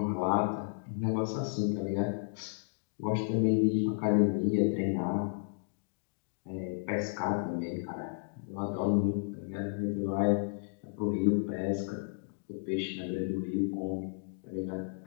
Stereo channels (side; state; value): right; silent; digital silence